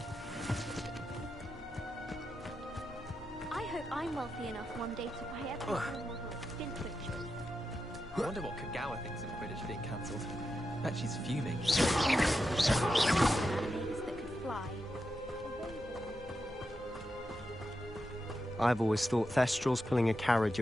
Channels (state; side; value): normal; both; correlation 0.88